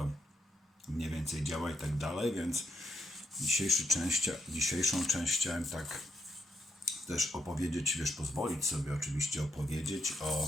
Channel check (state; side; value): normal; both; correlation 0.79